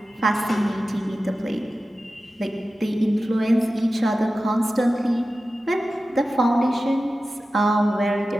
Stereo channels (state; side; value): normal; both; correlation 0.94